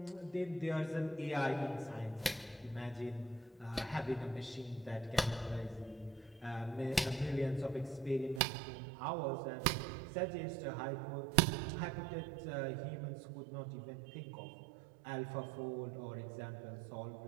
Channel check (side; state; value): left; drops out; at 8.4 s